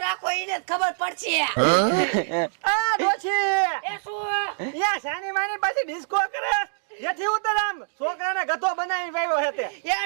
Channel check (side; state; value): left; silent; digital silence